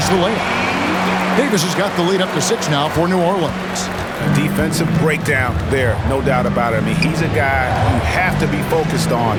the layup. Davis has got the lead up to 6 now for New Orleans. Defensive breakdown there, no doubt about it. I mean, he's a guy you have to be focused on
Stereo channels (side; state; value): both; identical; correlation 1.00